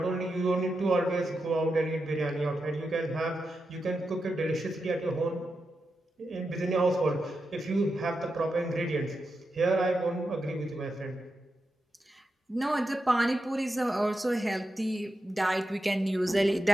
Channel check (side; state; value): both; normal; correlation 0.88